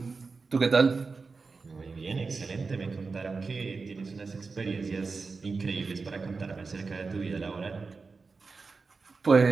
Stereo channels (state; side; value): quieter; left; 4.4 dB